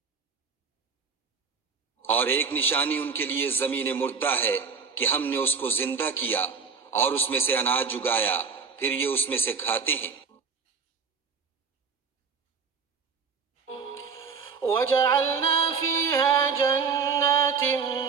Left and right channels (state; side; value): quieter; left; 5.7 dB